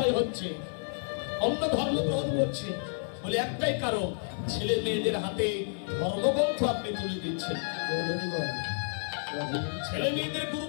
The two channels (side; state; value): right; silent; 56 dB below the other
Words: হচ্ছে, অন্য ধর্ম গ্রহণ করছে। বলে একটাই কারণ, ছেলে মেয়েদের হাতে ধর্মগ্রন্থ আপনি তুলে দিচ্ছেন, ছেলে মেয়েদের